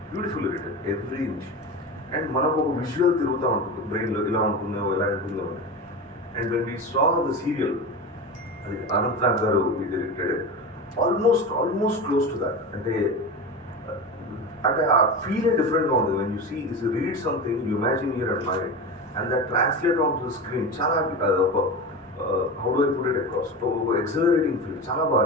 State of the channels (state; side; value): normal; both; correlation 0.25